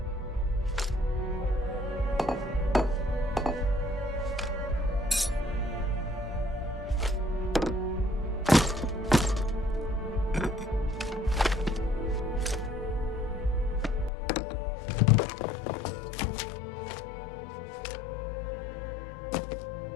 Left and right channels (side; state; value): right; drops out; at 14.1 s